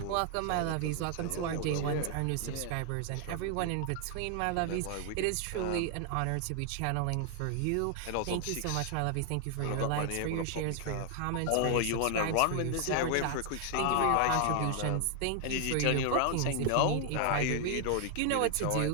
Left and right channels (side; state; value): both; different; correlation 0.00